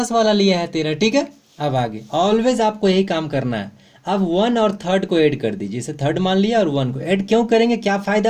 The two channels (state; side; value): identical; both; correlation 1.00